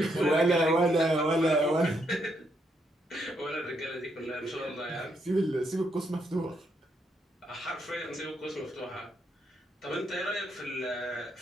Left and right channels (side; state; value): both; normal; correlation 0.76